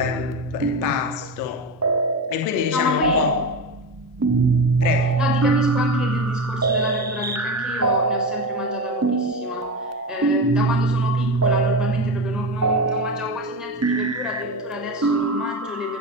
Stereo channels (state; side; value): normal; both; correlation 0.20